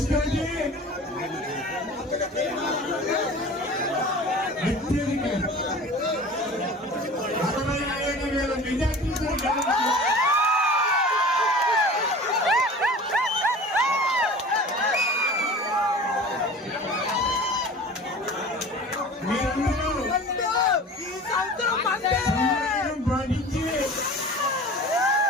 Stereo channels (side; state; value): both; normal; correlation 0.39